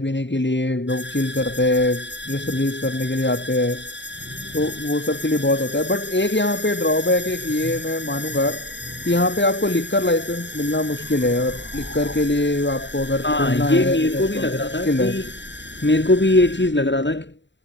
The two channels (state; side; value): late; right; 0.53 ms